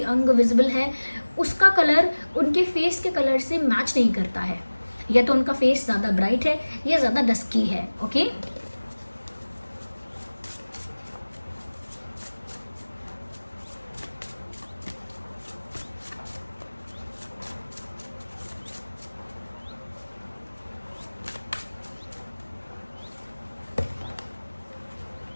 अंग विजिबल है, उसका कलर उनके फेस के कलर से मैच नहीं करता है। या तो उनका फेस ज़्यादा ब्राइट है या ज़्यादा डस्की है। ओके,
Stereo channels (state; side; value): inverted; both; correlation -1.00